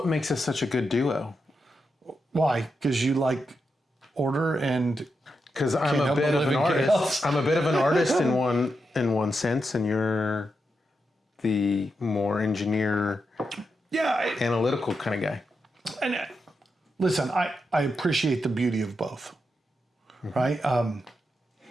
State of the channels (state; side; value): normal; both; correlation 0.86